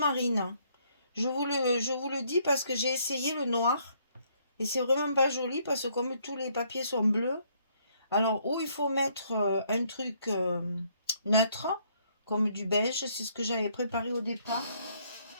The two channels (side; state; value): both; inverted; correlation -0.68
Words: Je vous le dis parce que j'ai essayé le noir. Et c'est vraiment pas joli parce que comme tous les papiers sont bleus. Alors, où il faut mettre un truc neutre, comme du beige, c'est ce que j'avais préparé au départ.